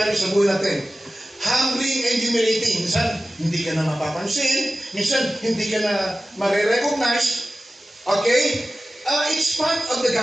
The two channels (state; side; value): normal; both; correlation 0.96